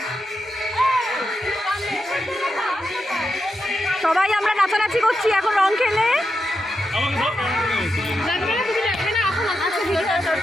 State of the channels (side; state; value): both; normal; correlation 0.87